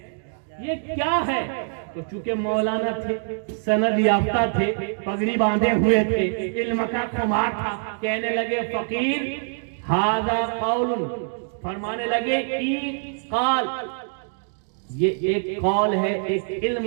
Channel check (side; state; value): left; silent; digital silence